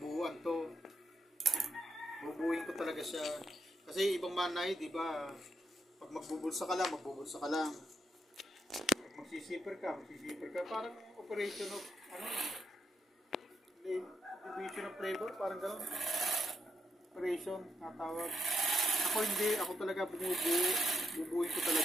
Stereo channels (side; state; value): both; normal; correlation 0.80